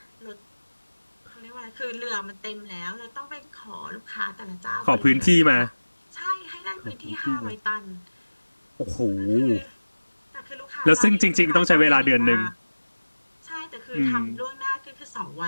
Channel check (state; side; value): inverted; both; correlation -1.00